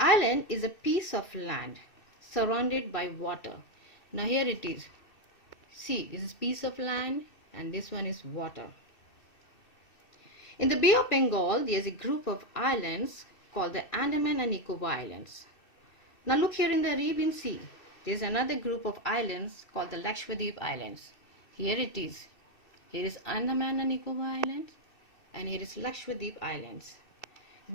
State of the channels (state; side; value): late; right; 2.6 ms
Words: is a piece of land surrounded by water. Now here it is. See, this is piece of land and this one is water. In the Bay of Bengal, there is a group of islands called the Andaman and Nicobar Islands. Now look here in the Arabian Sea. There is another group of islands called the Lakshadweep Islands. Here it is. Here is Andaman and Nicobar Islands and here is Lakshadweep Islands.